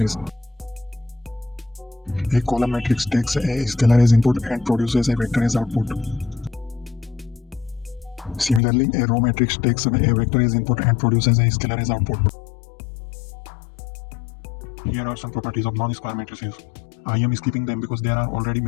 A column matrix takes a scalar as input and produces a vector as output. Similarly, a row matrix takes a vector as input and produces a scalar as output. Here are some properties of non-square matrices. I am skipping them because there are already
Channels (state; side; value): drops out; right; at 8.6 s